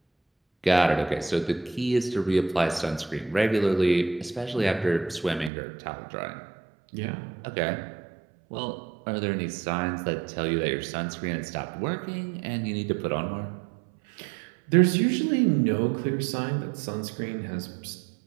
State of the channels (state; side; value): drops out; left; at 5.5 s